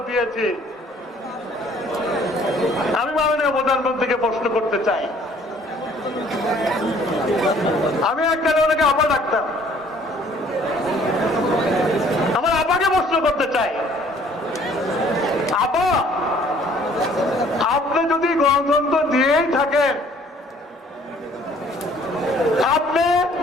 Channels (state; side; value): normal; both; correlation 0.57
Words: দিয়েছি। আমি মাননীয় প্রধানমন্ত্রীকে প্রশ্ন করতে চাই, আমি এককালে ওনাকে আপা ডাকতাম, আমার আপাকে প্রশ্ন করতে চাই, আপা আপনি যদি গণতন্ত্র দিয়েই থাকেন, আপনি